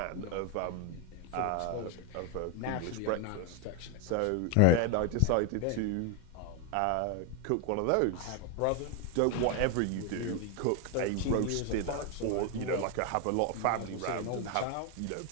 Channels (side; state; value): both; different; correlation 0.01